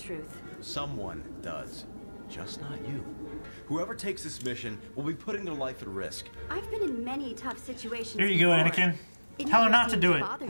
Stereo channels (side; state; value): both; inverted; correlation -1.00